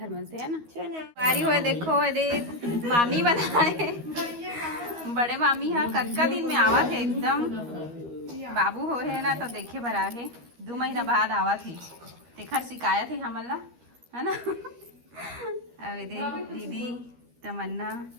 में से, है ना। संगवारी हुए देखो ये मामी बनाए, बड़े मामी है कक्का दिन में आवा थे एकदम। बाबू हो है ना तो देखे भरा है 2 महीना बाद आवा थे, तेखर शिकायत है हमला, है ना। अरे दीदी तमन्ना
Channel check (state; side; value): late; left; 13 ms